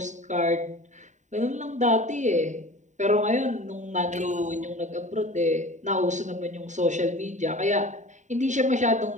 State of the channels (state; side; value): late; left; 0.35 ms